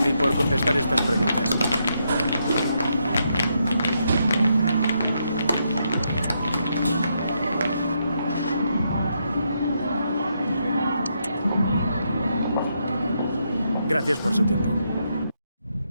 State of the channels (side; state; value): both; inverted; correlation -0.79